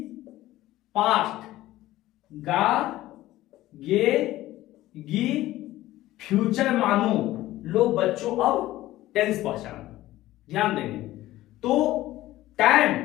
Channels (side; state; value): right; quieter; 15.9 dB